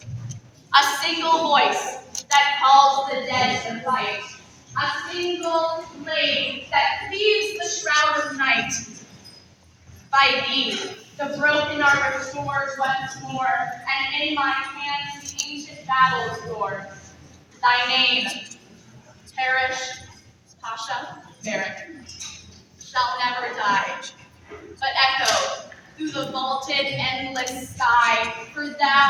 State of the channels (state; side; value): identical; both; correlation 1.00